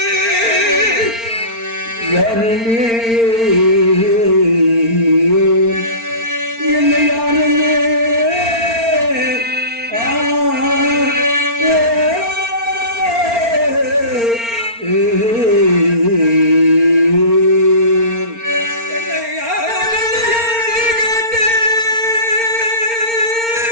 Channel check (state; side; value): late; left; 4.4 ms